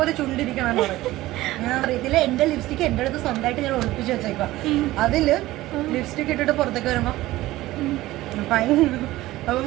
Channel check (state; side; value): quieter; left; 17.0 dB